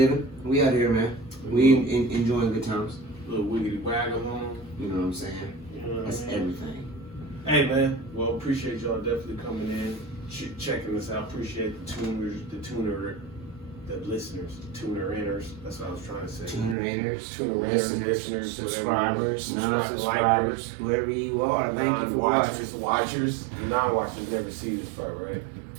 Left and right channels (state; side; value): drops out; left; at 16.8 s